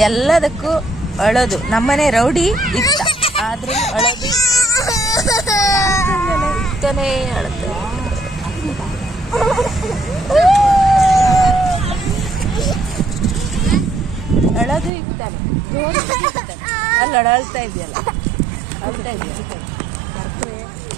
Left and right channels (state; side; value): drops out; left; at 14.9 s